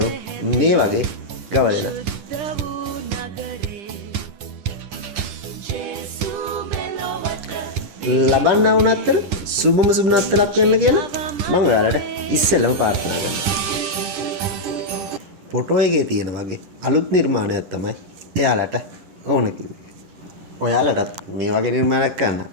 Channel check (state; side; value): late; left; 10 ms